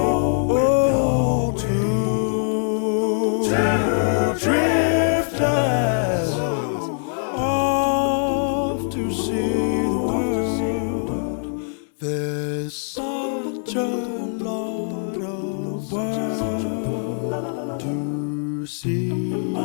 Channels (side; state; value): right; silent; digital silence